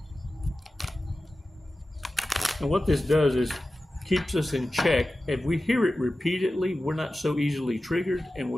And what this does is keeps us in check. If we hear it repeatedly, we're not so easily triggered, and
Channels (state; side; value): normal; both; correlation 0.94